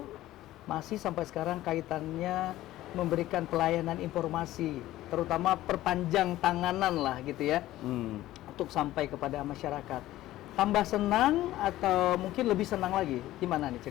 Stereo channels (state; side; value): quieter; right; 15.3 dB